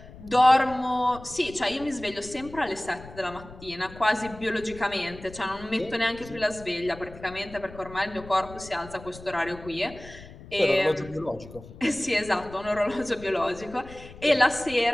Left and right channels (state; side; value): noise; left; rumble, 17 dB below the sound